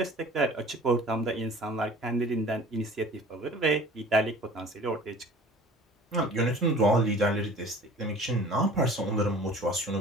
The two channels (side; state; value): both; normal; correlation 0.45